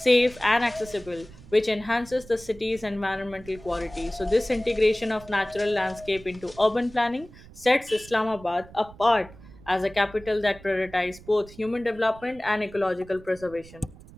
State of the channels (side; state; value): right; noise; rumble, 20 dB below the sound